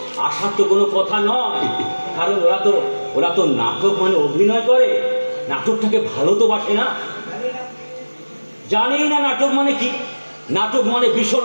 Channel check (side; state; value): both; inverted; correlation -1.00